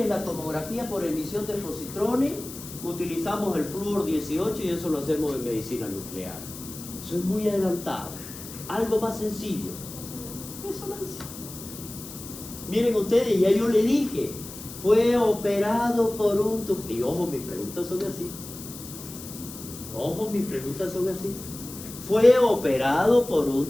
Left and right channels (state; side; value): noise; left; hiss, 13 dB below the sound